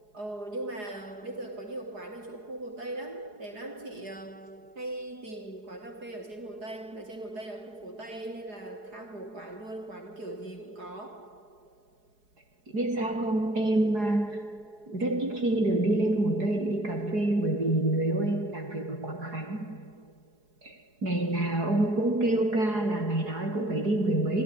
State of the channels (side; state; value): left; late; 4.8 ms